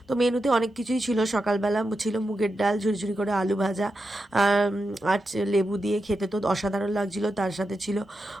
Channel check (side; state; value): both; normal; correlation 0.88